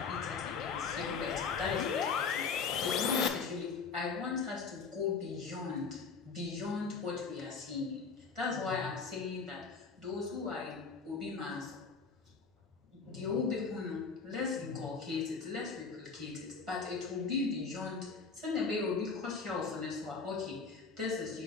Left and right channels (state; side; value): quieter; right; 5.0 dB